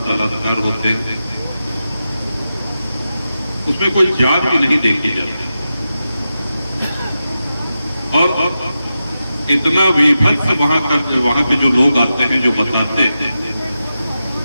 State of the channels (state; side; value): inverted; both; correlation -0.91